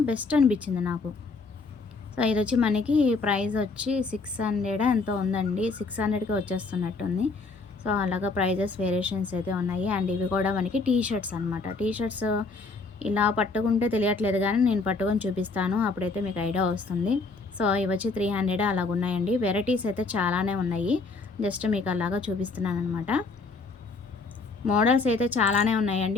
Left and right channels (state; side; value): quieter; right; 3.9 dB